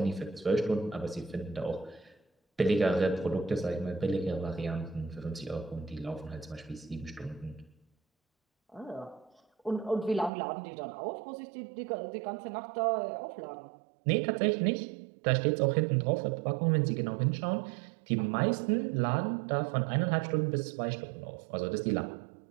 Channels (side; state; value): left; drops out; at 10.3 s